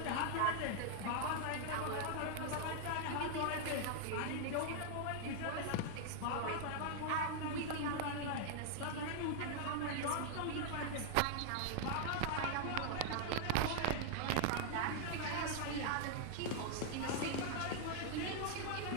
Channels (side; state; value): both; different; correlation 0.00